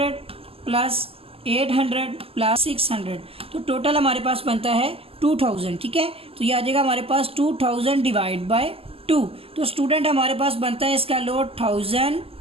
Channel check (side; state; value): left; late; 0.28 ms